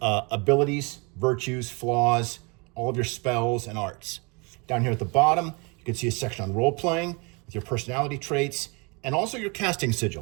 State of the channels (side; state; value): left; quieter; 30.2 dB